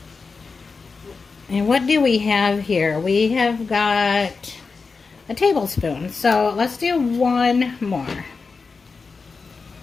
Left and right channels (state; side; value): quieter; right; 4.6 dB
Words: And what do we have here? We have got a tablespoon, so let's do one more.